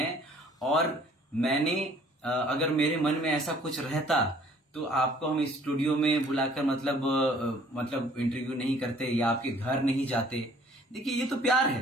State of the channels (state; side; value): normal; both; correlation 0.56